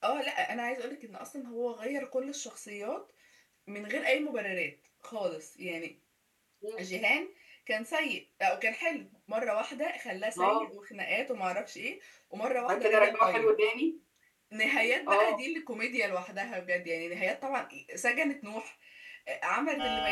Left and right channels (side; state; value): both; identical; correlation 1.00